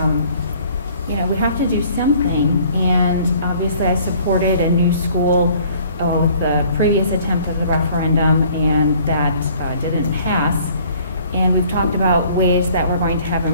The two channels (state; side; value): inverted; both; correlation -0.55